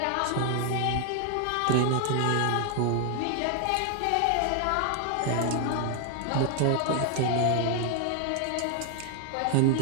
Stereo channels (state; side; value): different; both; correlation 0.00